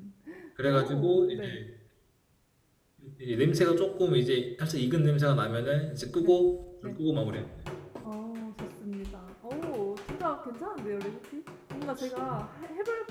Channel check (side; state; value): both; identical; correlation 1.00